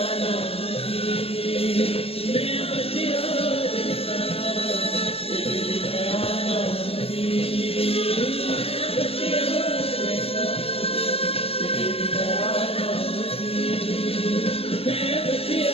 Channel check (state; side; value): late; right; 0.28 ms